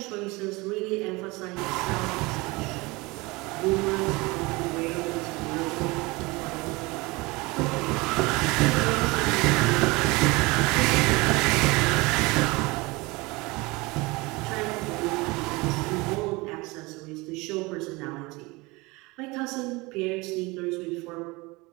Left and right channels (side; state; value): left; quieter; 23.9 dB